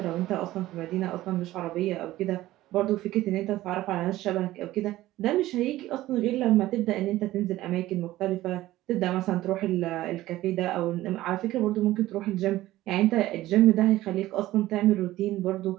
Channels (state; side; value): quieter; left; 15.9 dB